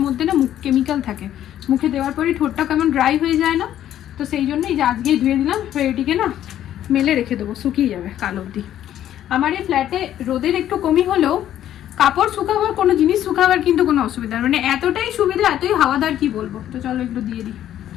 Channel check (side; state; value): right; quieter; 11.6 dB